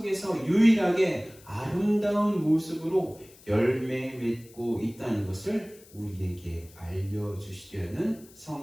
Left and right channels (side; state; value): left; noise; hiss, 24 dB below the sound